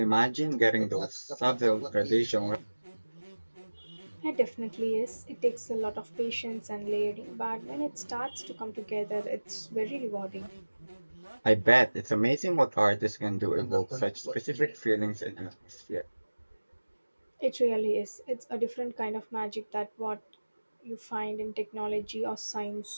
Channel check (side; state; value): both; inverted; correlation -1.00